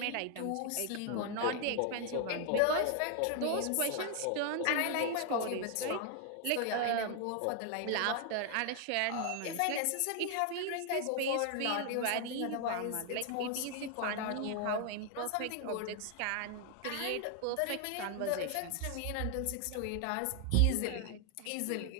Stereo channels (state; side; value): different; both; correlation 0.00